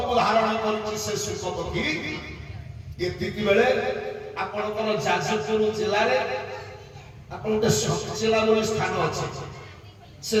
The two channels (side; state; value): both; identical; correlation 1.00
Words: ଧାରଣ କରିଛି ସେ ଶୁକ ପକ୍ଷୀ, ଏତିକି ବେଳେ ଆପଣଙ୍କର ଯାଜପୁର ଜିଲ୍ଲାରେ ଆପଣ ଗୋଟେ ସତଚିଲା ବୋଲି ସ୍ଥାନ ଅଛି। ସେ